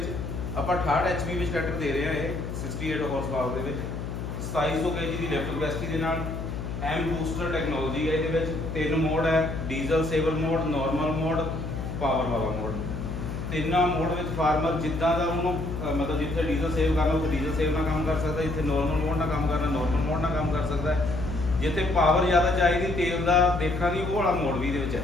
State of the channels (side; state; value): left; noise; hum, 5 dB below the sound